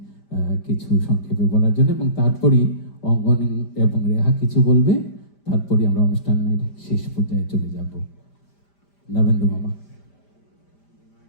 কিছু সংক্ষেপে বলার জন্য, এবং তারপরই অঙ্গন এবং রেহা কিছু বলবে, তারপরই আমরা অনুষ্ঠানের শেষ পর্যায়ে চলে যাব। নবেন্দু মামা।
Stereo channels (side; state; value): right; late; 5.0 ms